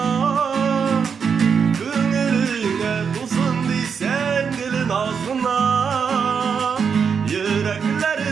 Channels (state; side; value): quieter; left; 6.4 dB